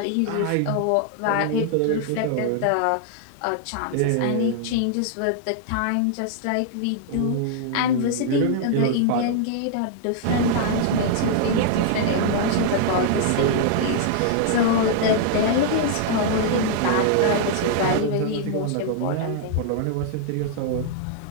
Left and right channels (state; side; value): different; both; correlation -0.01